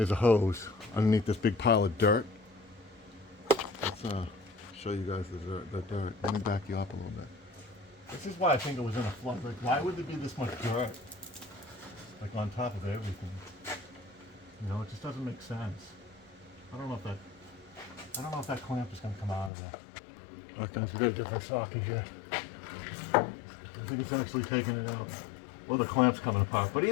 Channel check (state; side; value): drops out; right; at 19.5 s